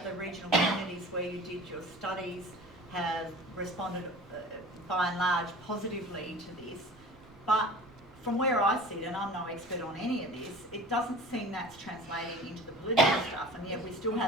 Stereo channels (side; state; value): right; noise; rumble, 25 dB below the sound